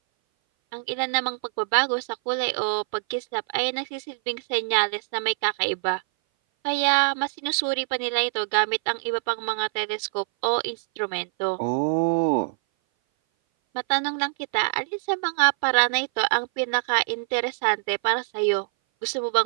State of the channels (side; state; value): left; silent; 58 dB below the other